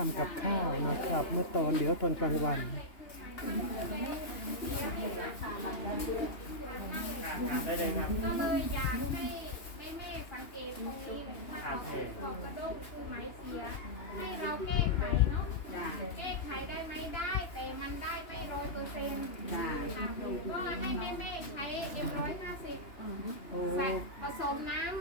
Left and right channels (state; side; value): late; right; 2.9 ms